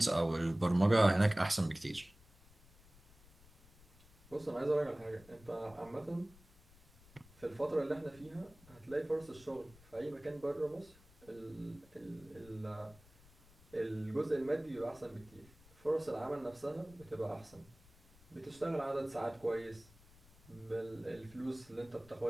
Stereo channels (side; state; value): left; noise; rumble, 25 dB below the sound